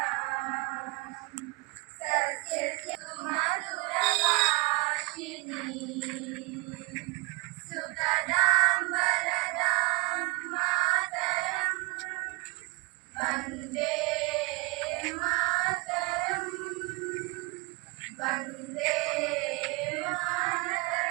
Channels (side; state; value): left; quieter; 26.0 dB